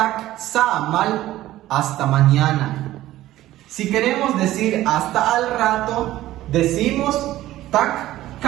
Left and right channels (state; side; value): quieter; left; 15.0 dB